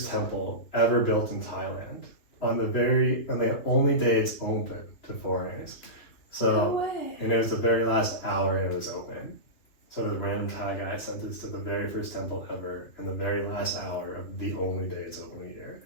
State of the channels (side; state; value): right; late; 3.1 ms